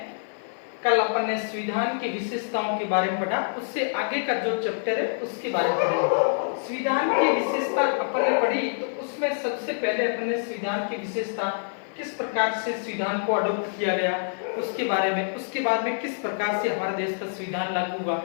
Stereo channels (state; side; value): silent; right; digital silence